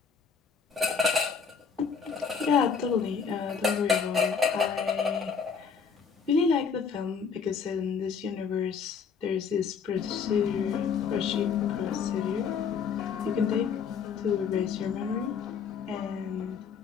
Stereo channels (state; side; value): quieter; right; 6.1 dB